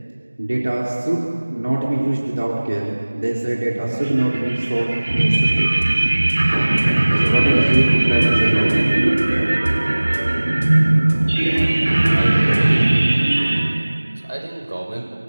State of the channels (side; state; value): both; inverted; correlation -1.00